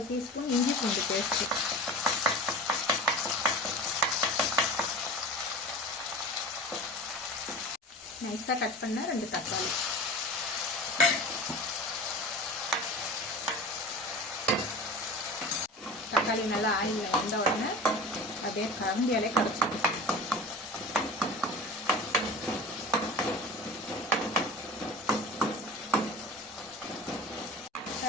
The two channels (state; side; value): normal; both; correlation 0.35